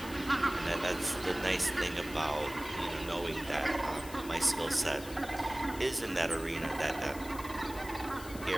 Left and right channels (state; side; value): noise; left; hiss, 15 dB below the sound